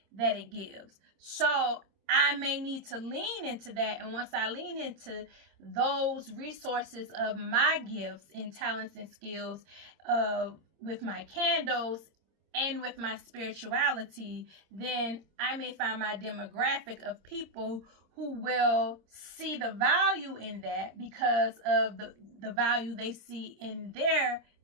that it gives. So I may need to lean into that. And once I lean into those resources of my gifts and talents and skills with my candles and with my spirituality, then I may find my demographic of people who will see the value in that because of the value they see in their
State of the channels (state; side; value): late; left; 26 ms